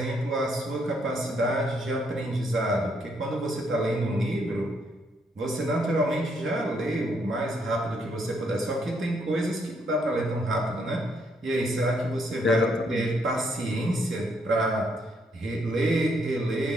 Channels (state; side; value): normal; both; correlation 0.73